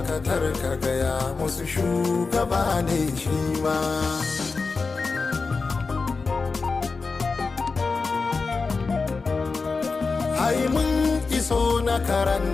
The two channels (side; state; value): right; quieter; 4.3 dB